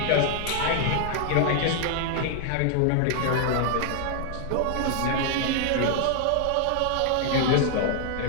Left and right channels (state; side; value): different; both; correlation 0.00